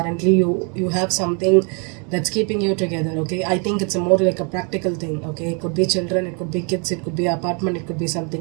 you have something that's keeping you together, okay. I think it's more like a practical thing, okay. It could be children, it could be kids, it could be apartment, it could be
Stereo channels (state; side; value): quieter; left; 35.4 dB